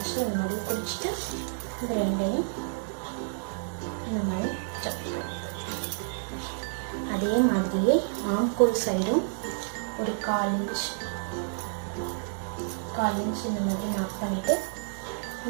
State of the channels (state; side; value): silent; left; 58 dB below the other